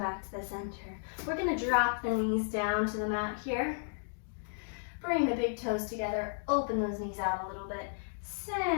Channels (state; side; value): silent; right; digital silence